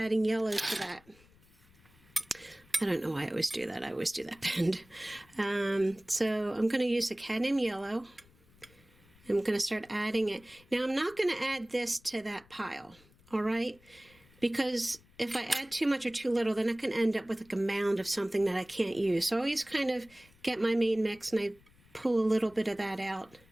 yellow to that. I don't know why I always do that. I always do that bend. So I'm going to use the cadmium yellow. I'm going to start adding it. Now I'm not going to add this to that pile, all right? Because if I add too much or too little, then I can end up with like a mound of something that I can't use. So I always kind of get my main mix and I pull a little bit of that out.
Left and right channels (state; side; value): noise; left; rumble, 28 dB below the sound